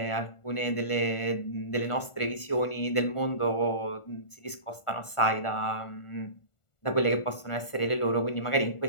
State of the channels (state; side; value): late; right; 1.4 ms